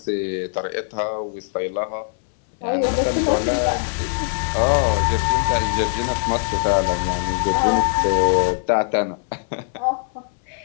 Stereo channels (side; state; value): right; silent; 60 dB below the other